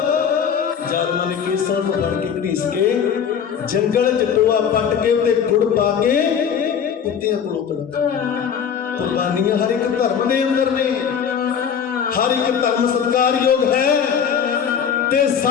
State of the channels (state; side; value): quieter; right; 7.6 dB